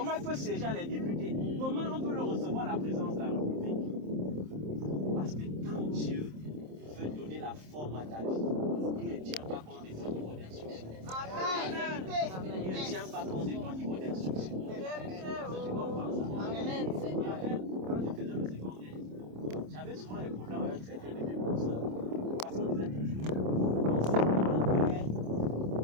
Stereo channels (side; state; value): left; late; 27 ms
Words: il peut siéger avec les députés? Comment on peut le recevoir à la présence de la République? Parce que quand Dieu veut donner la forme à ta vie, il ne tient pas compte de ton niveau d'instruction. Il ne tient pas compte de ton niveau d'instruction. Tu comprends ça? Amen, Seigneur. Quand je faisais le secondaire, j'avais souvent des problèmes avec certains de mes professeurs. Parce qu'on disait toujours,